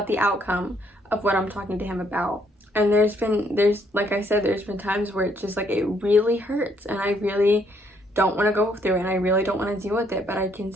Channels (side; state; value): both; normal; correlation 0.69